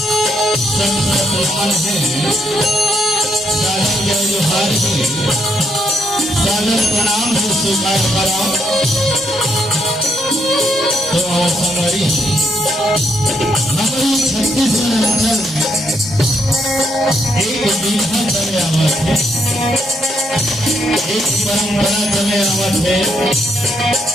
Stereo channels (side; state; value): both; normal; correlation 0.75